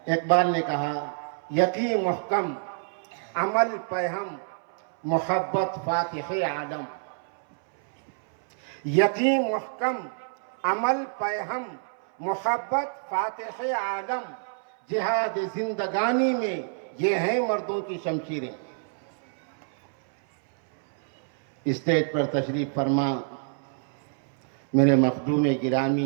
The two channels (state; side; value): silent; left; 59 dB below the other